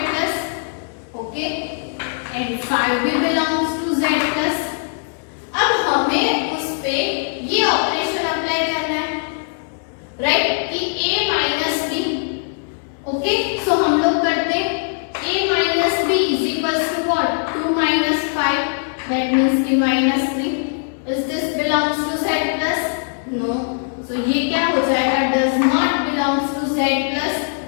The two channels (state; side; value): silent; right; digital silence